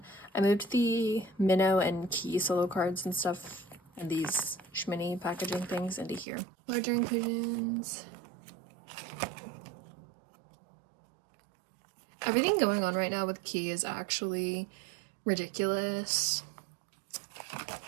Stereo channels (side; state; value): left; drops out; at 6.2 s